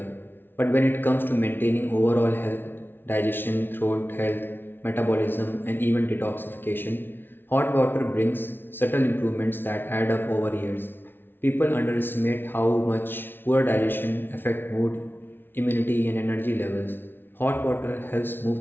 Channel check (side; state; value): right; late; 0.10 ms